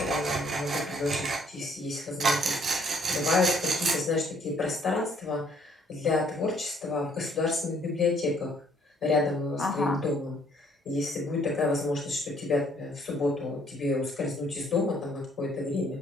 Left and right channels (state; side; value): normal; both; correlation 0.63